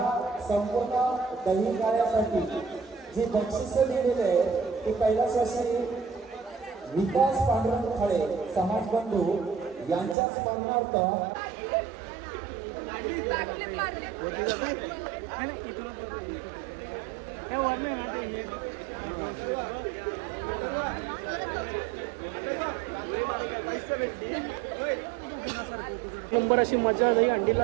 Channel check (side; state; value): left; drops out; at 10.2 s